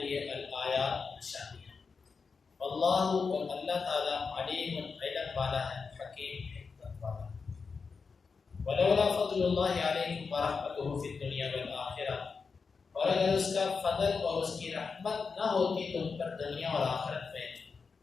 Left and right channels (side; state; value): right; quieter; 5.0 dB